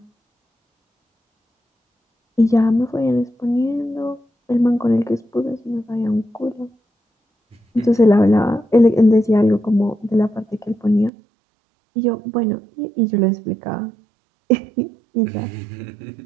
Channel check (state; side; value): drops out; left; at 11.1 s